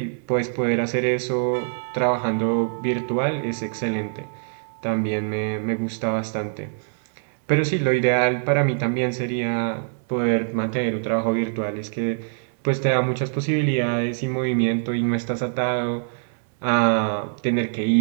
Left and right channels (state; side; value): silent; left; digital silence